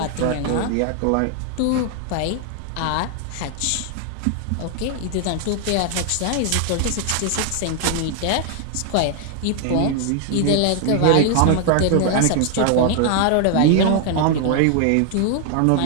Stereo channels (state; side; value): different; both; correlation 0.00